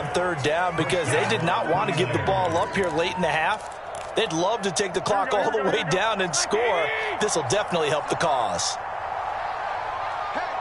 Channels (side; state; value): both; identical; correlation 1.00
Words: 3rd down because they did not want to give the ball up here late in the half. They'd love to take the clock all the way down and score. This will definitely help the cause.